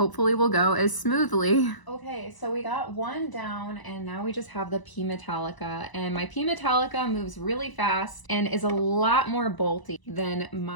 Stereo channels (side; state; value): right; late; 1.0 ms